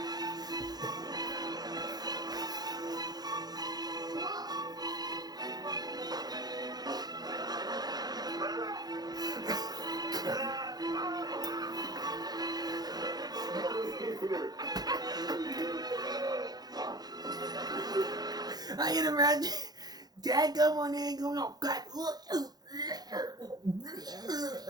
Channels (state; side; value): late; left; 0.19 ms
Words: I can imagine Dad come on in going, oh God.